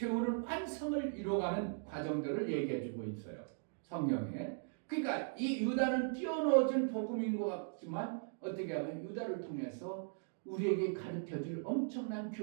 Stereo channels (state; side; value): silent; left; digital silence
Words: 완성을 이뤄가는 과정들을 얘기해주고 있어요. 성경에. 그러니까 이 유다는 띄어넣어진 복음인 것 같지만 어떻게 하면 유다를 통해서 우리에게 가르쳐줄 엄청난